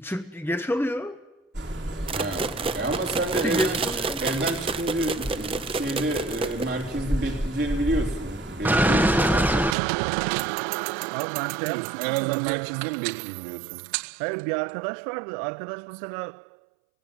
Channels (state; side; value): drops out; left; at 9.8 s